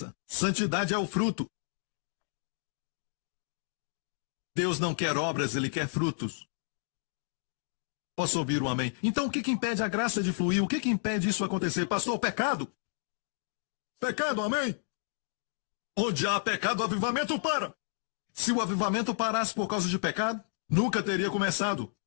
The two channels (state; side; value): silent; right; digital silence